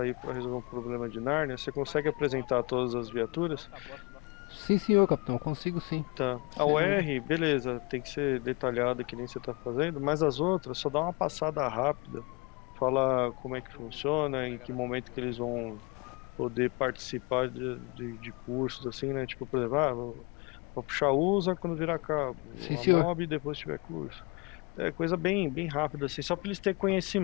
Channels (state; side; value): quieter; right; 28.4 dB